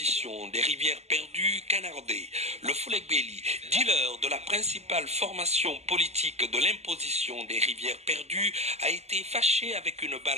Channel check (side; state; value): left; late; 0.32 ms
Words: des rivières perdues, Canardé, le Foulegbeli, dealer de la principale formation politique de l'imposition des rivières perdues, a été fâché avec une